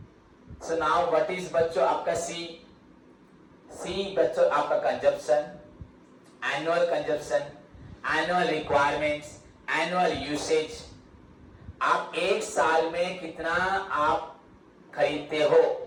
So now what is बच्चों आपका C? सी बच्चों आपका consumption, annual consumption, annual requirements, annual usage, आप एक साल में कितना आप खरीदते हो,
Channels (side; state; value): both; identical; correlation 1.00